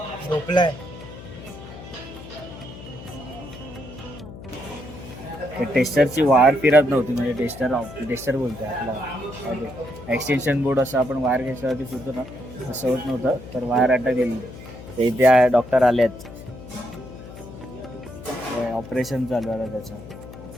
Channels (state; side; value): noise; left; hum, 15 dB below the sound